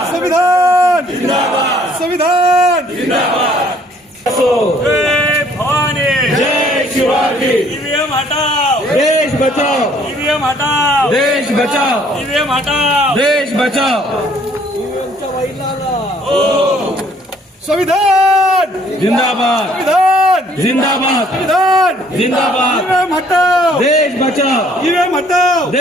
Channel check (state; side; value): normal; both; correlation 0.61